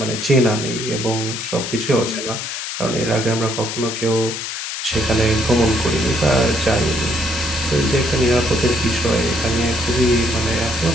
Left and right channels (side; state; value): left; noise; hiss, 5 dB below the sound